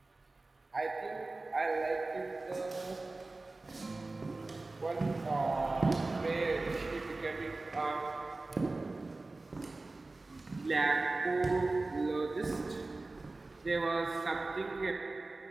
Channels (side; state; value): left; quieter; 3.2 dB